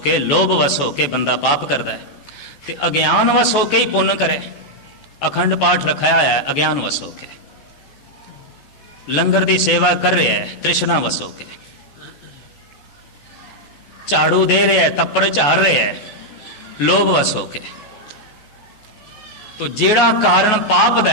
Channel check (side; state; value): right; late; 14 ms